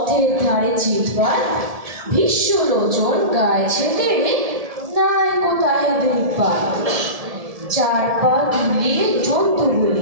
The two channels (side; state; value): left; late; 1.7 ms